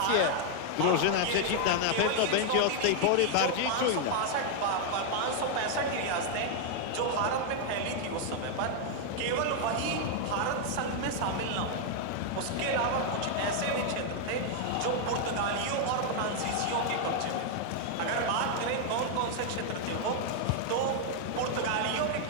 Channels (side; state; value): both; different; correlation 0.00